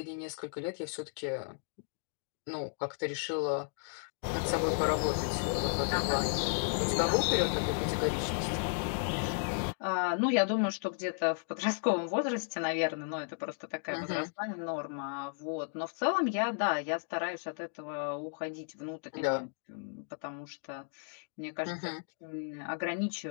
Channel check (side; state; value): right; silent; digital silence